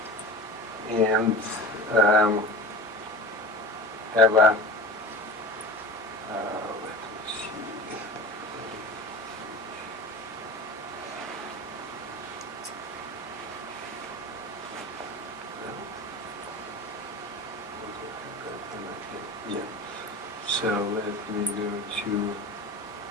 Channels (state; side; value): normal; both; correlation 0.34